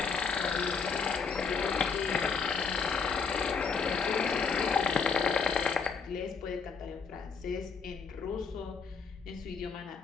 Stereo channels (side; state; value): right; quieter; 5.4 dB